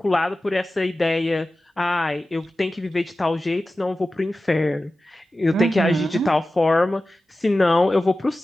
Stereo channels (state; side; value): normal; both; correlation 0.95